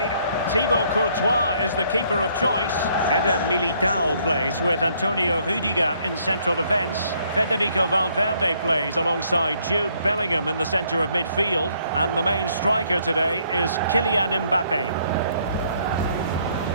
Thibaut Courtois is the keeper of choice. Eder Militao plays with Antonio Rudiger in central defence. Federico Valverde plays alongside Jude Bellingham in the centre of midfield. And the main striker today is Kylian Mbappe.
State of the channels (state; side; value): inverted; both; correlation -0.67